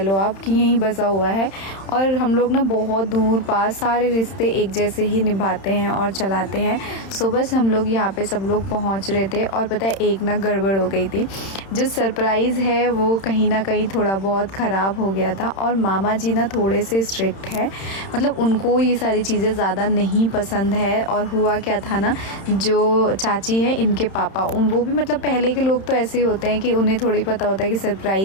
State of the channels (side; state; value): right; late; 31 ms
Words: आप कि यहीं बसा हुआ है। और हम लोग ना बहुत दूर पास सारे रिश्ते एक जैसे ही निभाते हैं और चलाते हैं। सो बस हम लोग यहाँ पे सब लोग पहुँच रहे थे और पता है एक ना गड़बड़ हो गई थी। जो सरप्राइज़ है वो कहीं ना कहीं थोड़ा बहुत ख़राब हो गया था। और मामा जी ना थोड़े से स्ट्रिक्ट है, मतलब उनको ये सारी चीज़ें ज़्यादा नहीं पसंद है। और हुआ क्या था ना, जो चाची है इनके पापा, वो भी मतलब पहले के लोग तो ऐसे ही होते हैं कि उन्हें थोड़ी पता होता है कि